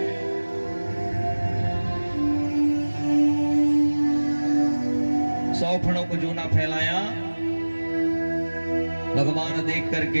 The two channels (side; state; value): both; inverted; correlation -1.00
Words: सौ फणों को जो ना फैलाया, भगवान देख